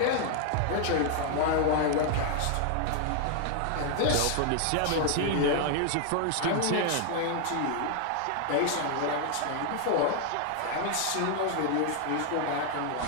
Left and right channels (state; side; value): different; both; correlation 0.00